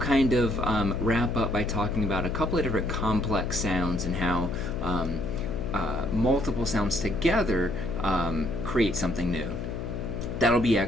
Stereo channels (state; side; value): noise; left; hum, 5 dB below the sound